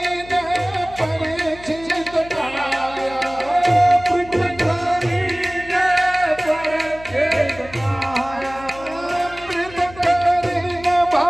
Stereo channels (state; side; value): noise; left; hum, 19 dB below the sound